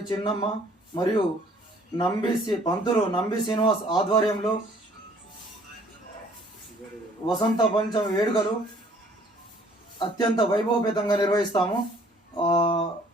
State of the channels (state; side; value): normal; both; correlation 0.58